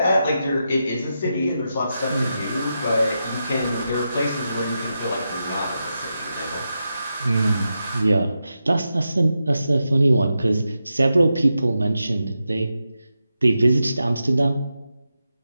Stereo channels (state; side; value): inverted; both; correlation -0.88